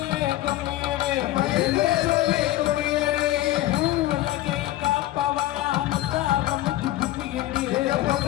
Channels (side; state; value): right; quieter; 15.4 dB